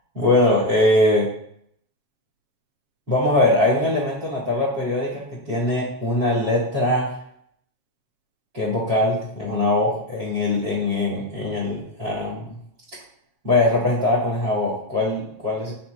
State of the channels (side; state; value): left; late; 7.4 ms